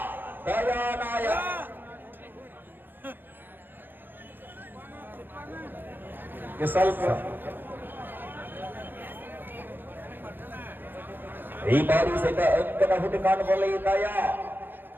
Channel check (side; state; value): left; late; 0.095 ms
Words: ದಯಾನಾಯ. ಸ್ವಲ್ಪ ಈ ಬಾರಿ ಸಹಿತ ಅಂಕದ ಹುಡುಕಾಟದಲ್ಲಿ ದಯ